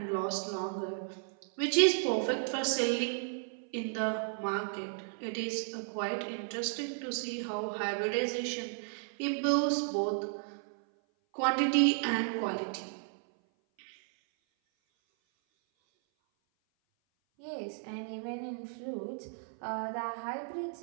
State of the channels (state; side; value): silent; left; 55 dB below the other